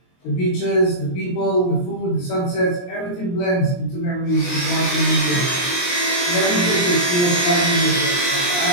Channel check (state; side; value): late; right; 23 ms